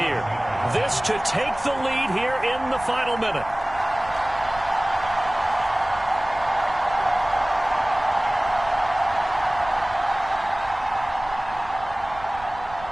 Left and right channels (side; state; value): right; noise; rumble, 17 dB below the sound